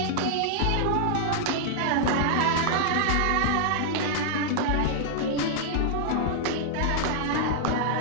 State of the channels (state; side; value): different; both; correlation -0.01